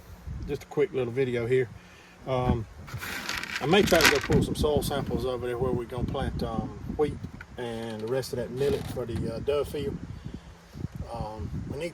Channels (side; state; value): both; identical; correlation 1.00